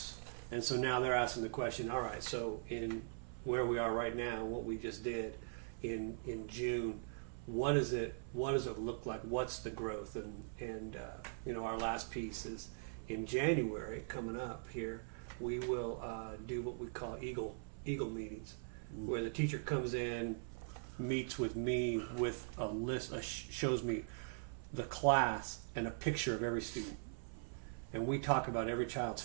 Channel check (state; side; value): silent; left; 50 dB below the other